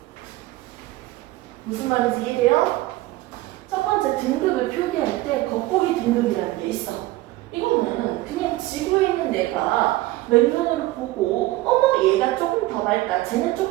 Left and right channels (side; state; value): left; quieter; 17.9 dB